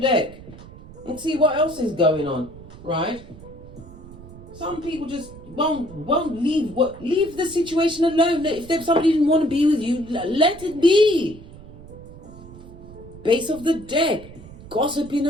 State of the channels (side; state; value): right; noise; rumble, 17 dB below the sound